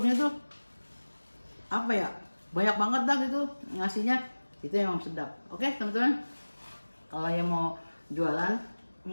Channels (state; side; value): inverted; both; correlation -1.00